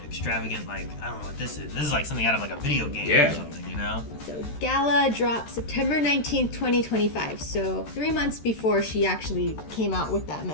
extravagant, like I don't know what this is. This is like something out of like a video game Yeah. or something, you know? So Gala dropped September 19th, 2025. So 3 months before she actually came out with that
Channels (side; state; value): right; late; 13 ms